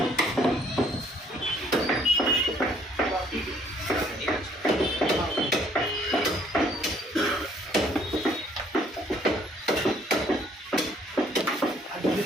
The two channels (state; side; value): normal; both; correlation 0.63